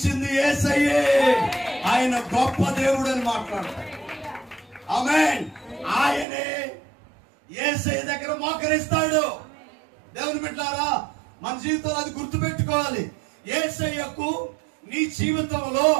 యేసయ్యే, ఆయన గొప్ప దేవుడు అని మాట్లాడతాడు. ఆమేన్. ఆయనే యేసయ్య దగ్గర మోకరిస్తాడు. దేవుని బిడ్డలారా, మన జీవితంలో అది గుర్తుపెట్టుకోవాలి. యేసయ్యకు నీ జీవితంలో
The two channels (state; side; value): drops out; left; at 6.2 s